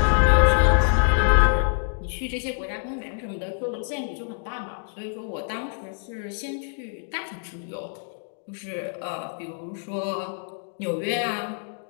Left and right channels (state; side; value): silent; right; 61 dB below the other